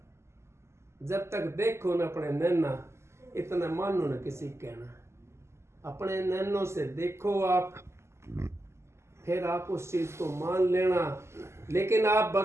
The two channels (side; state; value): left; late; 0.13 ms